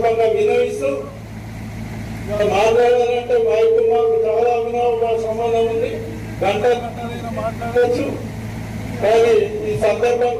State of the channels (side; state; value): both; identical; correlation 1.00